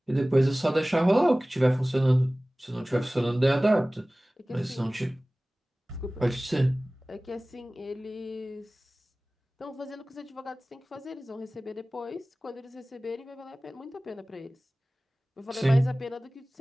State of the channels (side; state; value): both; normal; correlation 0.98